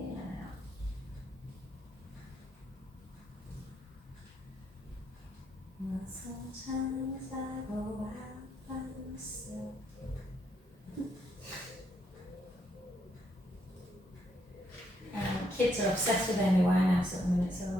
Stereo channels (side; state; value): both; normal; correlation 0.75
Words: and out. Well, sometimes I go out by myself. Kids are obsessed with Amy Winehouse at the minute, so